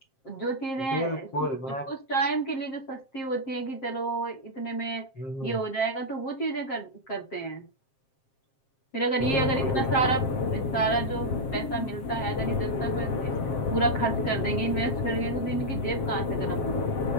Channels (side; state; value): right; late; 7.5 ms